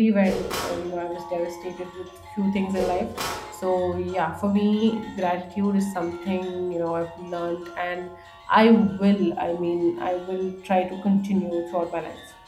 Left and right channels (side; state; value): both; identical; correlation 1.00